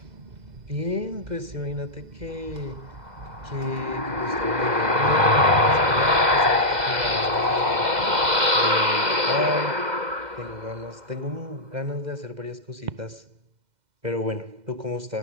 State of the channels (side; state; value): left; late; 2.0 ms